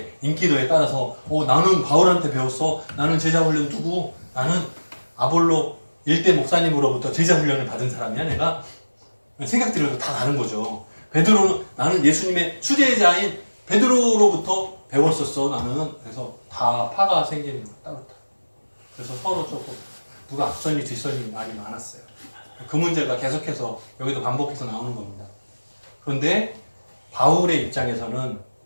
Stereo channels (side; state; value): both; inverted; correlation -1.00